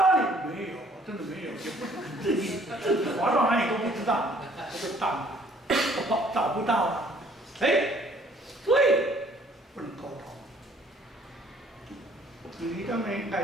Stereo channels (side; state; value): both; normal; correlation 0.60